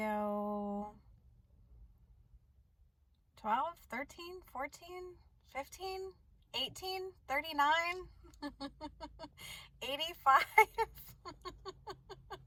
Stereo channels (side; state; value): both; identical; correlation 1.00